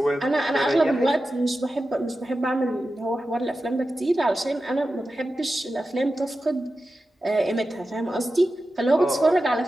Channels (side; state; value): both; normal; correlation 0.92